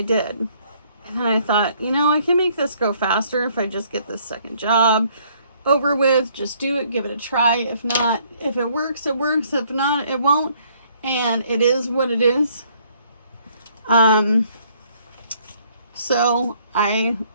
did. And then I thought, you know, I can make this go faster if I just get this second job over with. Just do it, give it a try. If not, if it works, it works. If not, it won't. And it is what it is. So I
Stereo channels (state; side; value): inverted; both; correlation -0.64